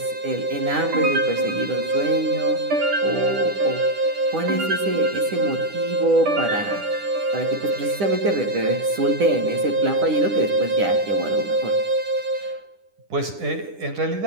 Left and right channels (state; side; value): late; left; 10 ms